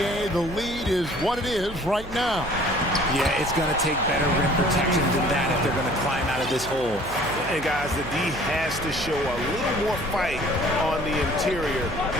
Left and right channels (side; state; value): right; noise; hum, 15 dB below the sound